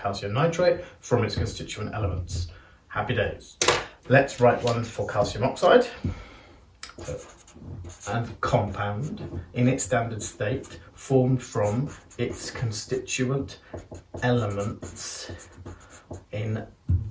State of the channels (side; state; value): both; identical; correlation 1.00